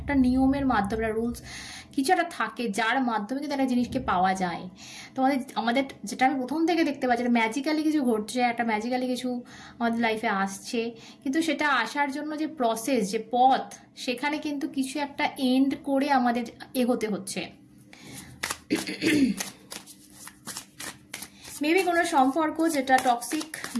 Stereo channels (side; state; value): both; identical; correlation 1.00